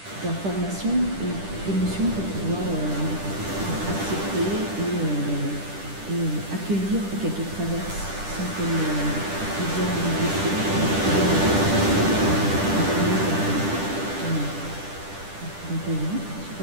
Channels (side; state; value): left; late; 10 ms